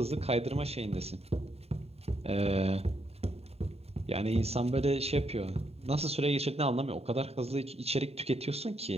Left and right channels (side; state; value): left; late; 0.30 ms